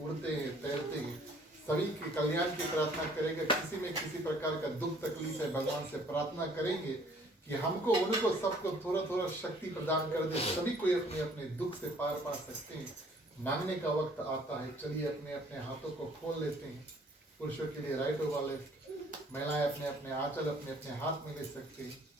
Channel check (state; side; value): normal; both; correlation 0.58